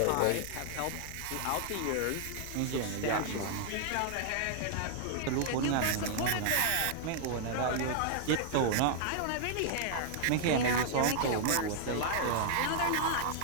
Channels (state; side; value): different; both; correlation -0.01